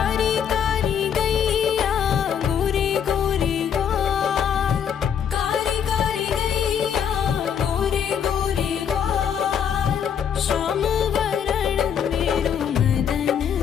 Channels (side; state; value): right; quieter; 8.1 dB